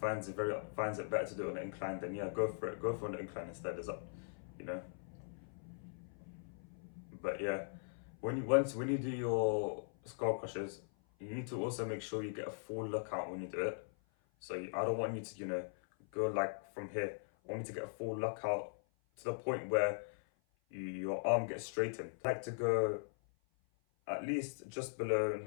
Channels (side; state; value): right; silent; 51 dB below the other